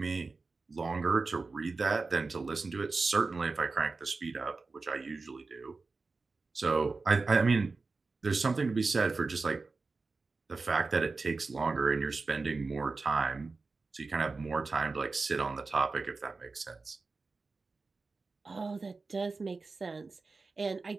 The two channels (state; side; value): quieter; left; 4.0 dB